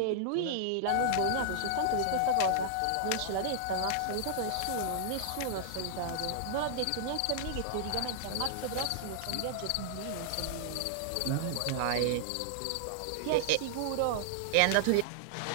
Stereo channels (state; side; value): different; both; correlation -0.01